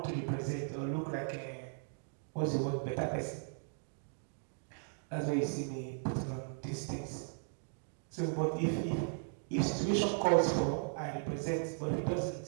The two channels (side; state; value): left; silent; digital silence